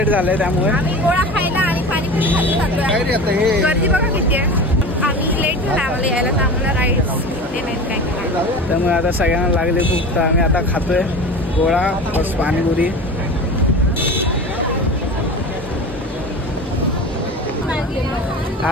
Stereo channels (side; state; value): both; normal; correlation 0.32